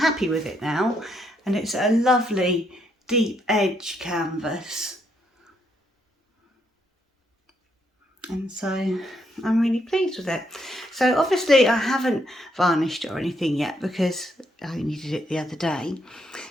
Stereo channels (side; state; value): both; normal; correlation 0.75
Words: with it now, and it's a lovely deep edge canvas. And so I'm really pleased with it. So obviously I haven't varnished it or anything yet because I only did it the other day.